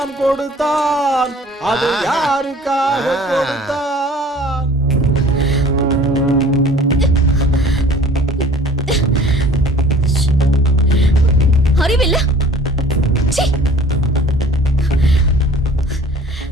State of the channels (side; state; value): both; normal; correlation 0.49